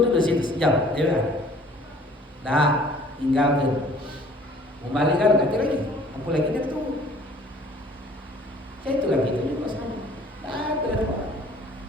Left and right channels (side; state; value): both; normal; correlation 0.53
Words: dulu di situ sejam, ya kan? Dah, tinggalkan. Mau balik kan nanti lagi. Apa lagi dia tunggu. Ya itu lagi itu juga sama. Ada